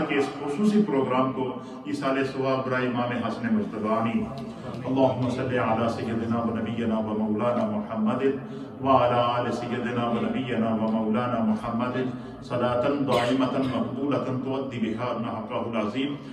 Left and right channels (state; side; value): identical; both; correlation 1.00